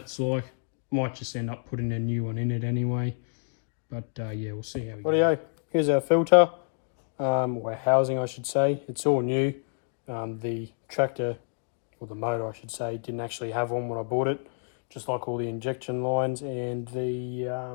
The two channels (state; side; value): silent; right; digital silence